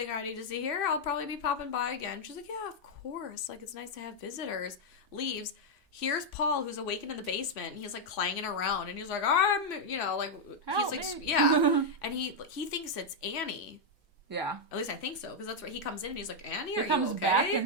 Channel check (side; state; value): both; normal; correlation -0.01